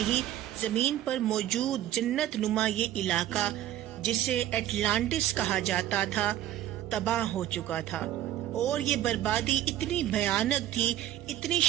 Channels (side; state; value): left; quieter; 12.8 dB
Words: ہی زمین پر موجود جنت نما یہ علاقہ، جسے اٹلانٹس کہا جاتا تھا، تباہ ہو چکا تھا، اور یہ بربادی اتنی بھیانک تھی، اتنی